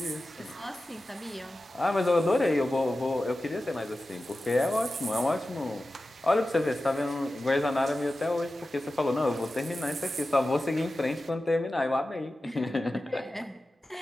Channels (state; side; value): normal; both; correlation 0.94